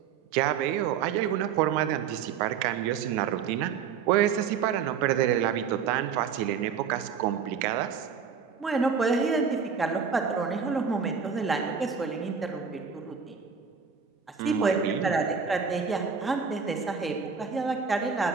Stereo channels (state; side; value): quieter; left; 6.5 dB